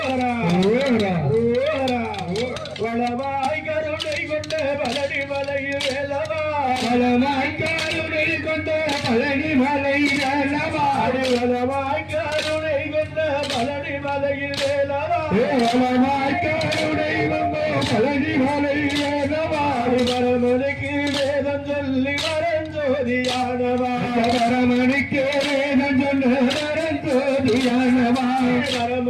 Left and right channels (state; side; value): identical; both; correlation 1.00